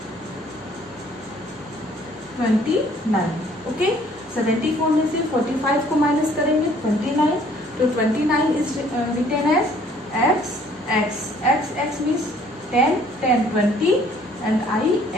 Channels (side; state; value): both; normal; correlation 0.58